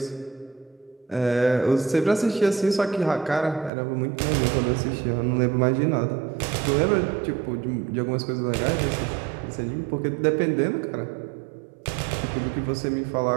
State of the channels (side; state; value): left; drops out; at 3.7 s